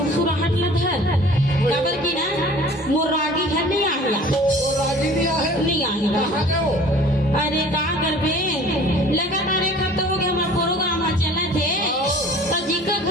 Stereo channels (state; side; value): normal; both; correlation 0.47